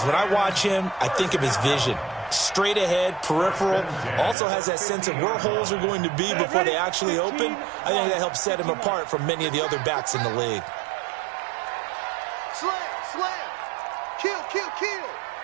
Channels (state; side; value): drops out; left; at 4.4 s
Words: when I watch him, I think of his vision. Straight ahead, peripheral, also has that sense of where holes are going to be before they actually open. I think that helps set him apart from many of the other backs in the league. Slam. Kill.